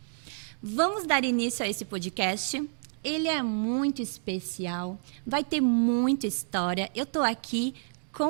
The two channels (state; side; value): silent; left; digital silence